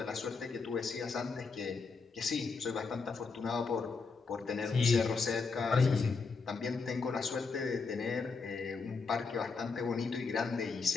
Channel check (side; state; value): right; quieter; 4.6 dB